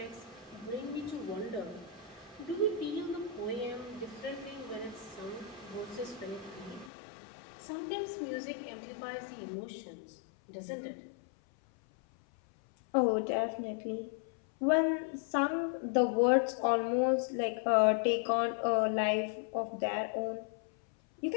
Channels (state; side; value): drops out; right; at 6.9 s